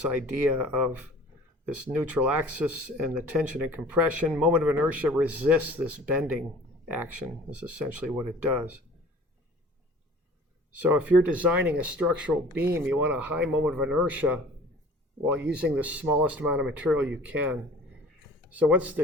idea of this neutral axis and the tension and compression. Moment of inertia resists this bending action, is essentially what it does. So if you're designing a structural beam, you want a high moment of inertia while using the smallest amount of material you can. So what's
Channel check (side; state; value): both; normal; correlation 0.46